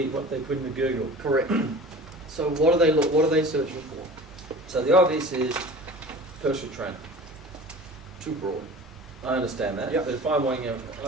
what they put into Google. Correct. So what are they searching for? So the obvious is personal trainer. Too broad. I understand that. Yep. But if I'm wanting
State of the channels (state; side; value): normal; both; correlation 0.40